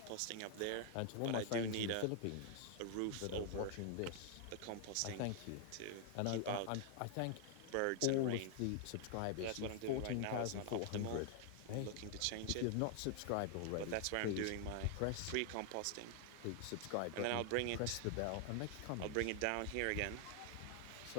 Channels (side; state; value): both; different; correlation 0.00